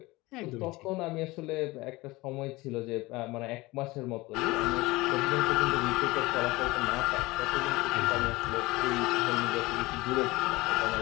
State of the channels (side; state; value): right; quieter; 21.0 dB